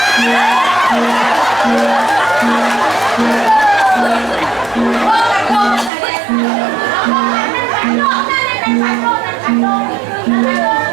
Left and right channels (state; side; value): drops out; left; at 5.9 s